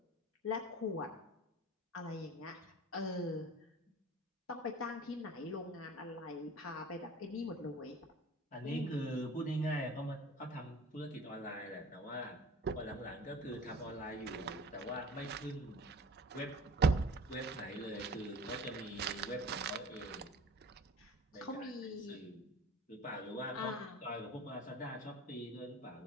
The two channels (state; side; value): normal; both; correlation 0.42